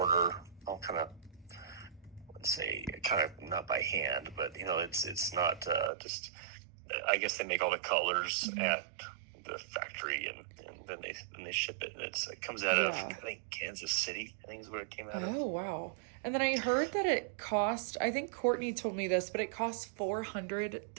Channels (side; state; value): left; drops out; at 5.9 s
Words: I'll kind of not by hand, but it's not just. I guess they make all the colors at the factory and then they ship it, and it comes out of I think Kansas City, I think is where it came out of. Oh wow. And then I heard that it cost, I think Courtney told me this, but it costs